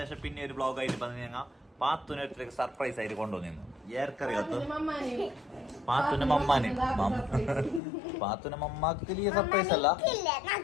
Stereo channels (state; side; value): drops out; right; at 7.8 s